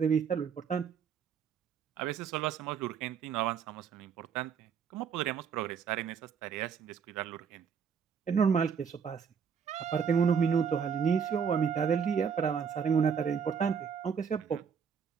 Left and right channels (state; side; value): quieter; left; 6.8 dB